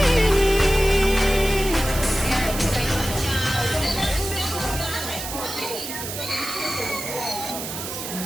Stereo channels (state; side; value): noise; right; hiss, 7 dB below the sound